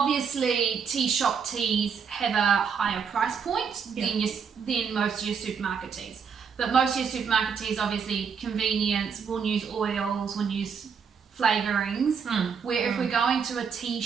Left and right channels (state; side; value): quieter; left; 6.5 dB